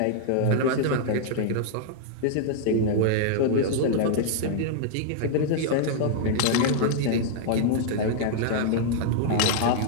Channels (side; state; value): both; different; correlation -0.01